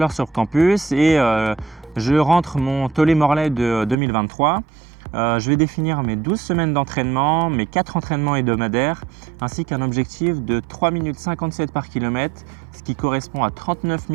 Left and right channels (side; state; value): left; drops out; at 4.0 s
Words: sur Campus et je rentre mon Tollet-Morlaix de 2023. Je vais définir mes 12 semaines d'entraînement, mes 4 entraînements hebdomadaires, ainsi qu'un objectif de 3 minutes 57 par kilomètre, ce qui correspond à 39